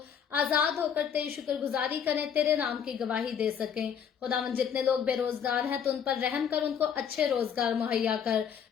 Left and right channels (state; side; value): quieter; right; 7.8 dB